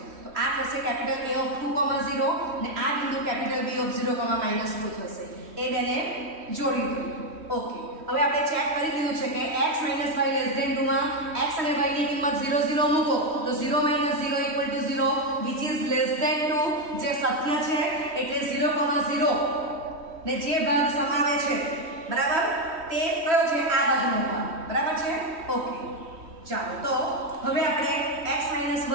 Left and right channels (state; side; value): late; left; 3.1 ms